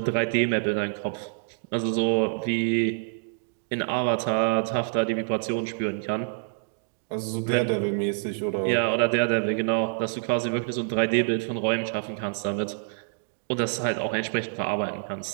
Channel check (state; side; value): silent; left; digital silence